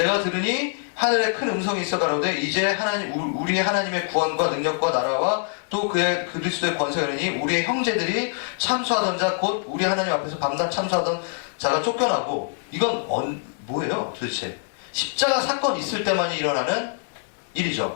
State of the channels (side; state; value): right; silent; 62 dB below the other